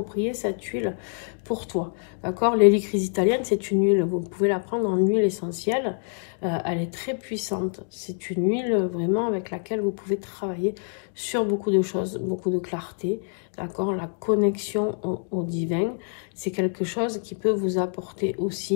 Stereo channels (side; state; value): right; silent; 61 dB below the other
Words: cette huile pour toi, d'accord. L'hélicryse italienne, c'est une huile, vous pouvez la prendre en huile essentielle, elle est très puissante, c'est une huile vraiment avec laquelle vous pouvez travailler sur beaucoup de choses, beaucoup de clarté, d'accord. La connexion au divin, c'est quelque chose qui peut vous apporter